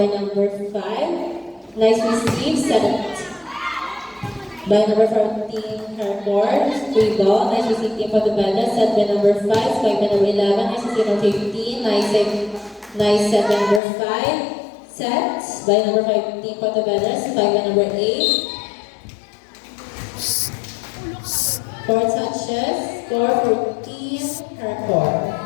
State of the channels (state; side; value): drops out; right; at 13.8 s